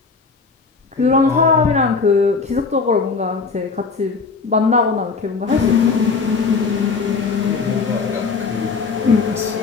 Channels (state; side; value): quieter; right; 4.7 dB